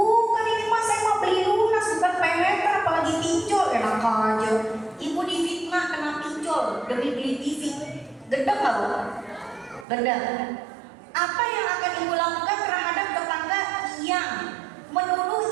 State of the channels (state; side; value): drops out; left; at 9.9 s